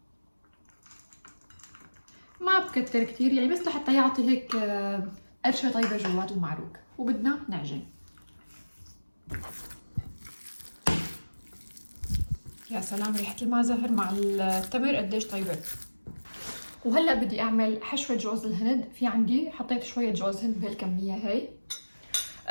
ما بكتر كتير يعني بس لحتى يعطي هيك قرشه طيبه جوات المعروك. وبدنا نعجن. يا سلام ريحه الماء زهر مع التمر قديش طيبه. وهلا بدي اعمل حشوه جوز الهند. في عندي حطيت شويه جوز هند بهالكميه هي.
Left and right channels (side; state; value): both; inverted; correlation -1.00